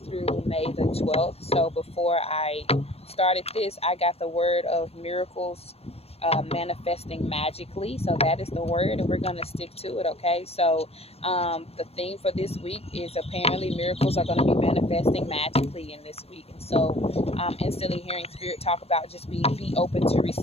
through May the 12th. So before I started this, I got the word of miracles manifesting magically. So that is the word, and we're gonna stick to it. Okay. So the theme for this week is apparently miracles are going to be manifesting magically in this week. And so instantly hearing spirit talk about just be open to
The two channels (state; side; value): late; right; 0.29 ms